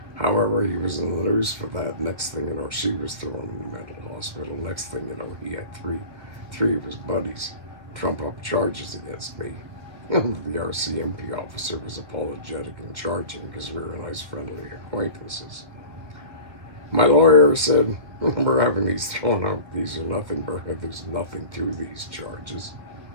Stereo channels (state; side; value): late; left; 2.1 ms